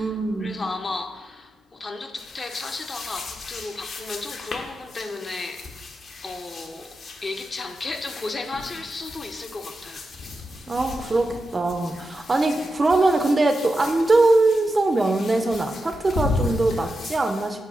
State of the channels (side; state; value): both; normal; correlation 0.90